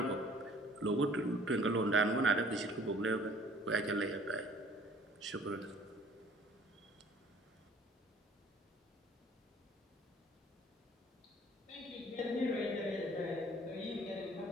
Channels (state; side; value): normal; both; correlation 0.54